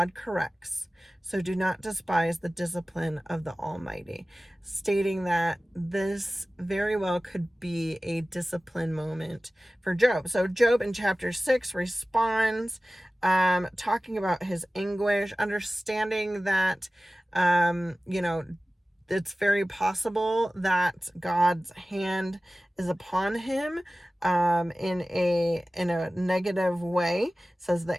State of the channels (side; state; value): both; normal; correlation 0.97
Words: corrects, so do not despise the discipline of the Almighty, stating that this very well could be a discipline moment for Job. So Job in chapter 6 responds, talking about his anguish, understanding that, it's very possible that God's hand is upon him in a negative way. Says,